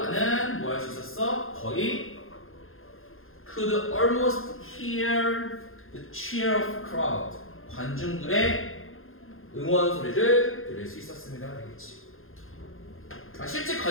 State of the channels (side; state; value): right; late; 0.60 ms